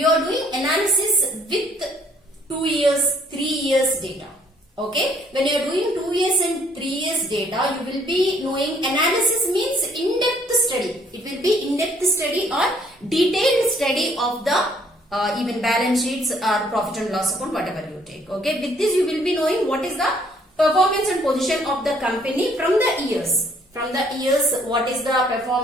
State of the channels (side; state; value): both; normal; correlation 0.63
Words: are doing analysis with 2 years, 3 years data. Okay, when you are doing 2 years and 3 years data, you will be knowing analysis means in-depth study. It will be in-depth study or detailed study of the even balance sheets or profit and loss account, whatever you take. Okay, with this you will be knowing what is the performance and position of the company from the years. From the years, what is the